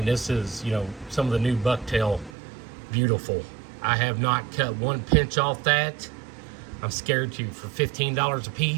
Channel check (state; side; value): drops out; left; at 2.3 s